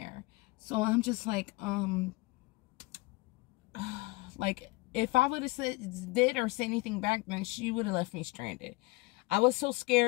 So I'm just like, like, if I would have did or said anything back then, she would have left me stranded. I was so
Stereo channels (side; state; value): right; quieter; 22.8 dB